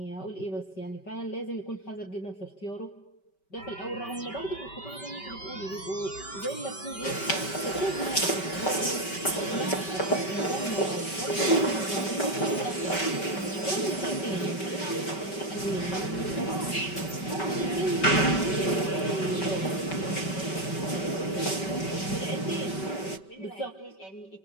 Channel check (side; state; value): right; late; 5.2 ms